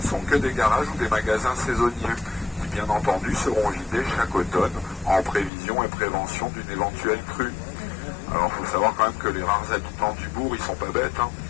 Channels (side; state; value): right; drops out; at 5.5 s